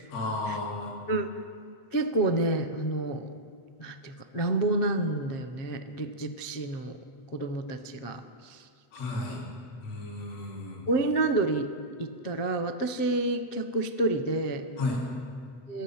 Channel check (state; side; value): late; right; 7.5 ms